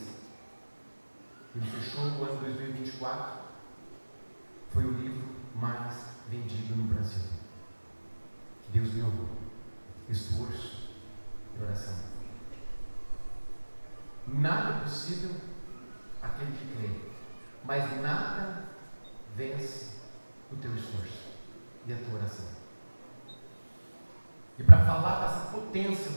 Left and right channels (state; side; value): inverted; both; correlation -1.00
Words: Ele fechou o ano 2024. Foi o livro mais vendido no Brasil. Deus me honrou. Esforço e oração. Nada é possível aquele que crê, mas nada vence o teu esforço e a tua oração. E para falar dessa potência